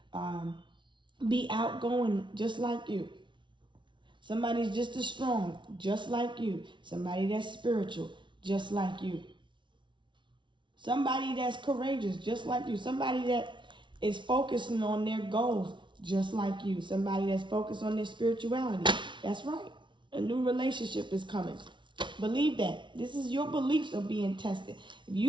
be outgoing just like you. Somebody's just as strong, just like you. Somebody that's spiritual, just like you. Somebody that's courageous, just like you. Somebody that is focusing on their goals, just like you. Somebody that's focused on their spirituality. That's right. A new relationship is coming. Believe that. This is your beliefs are being tested. If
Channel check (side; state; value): left; late; 0.24 ms